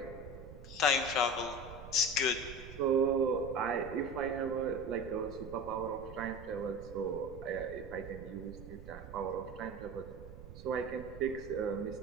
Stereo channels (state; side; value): noise; right; rumble, 13 dB below the sound